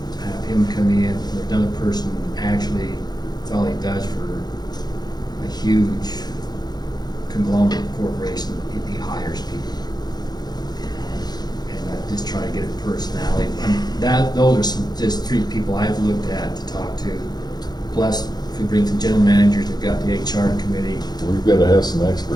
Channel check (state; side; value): late; right; 0.20 ms